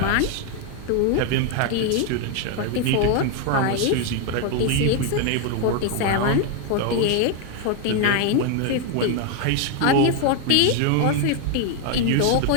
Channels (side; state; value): both; different; correlation 0.01